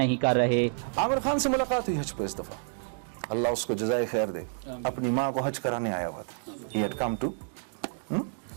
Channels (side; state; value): left; silent; digital silence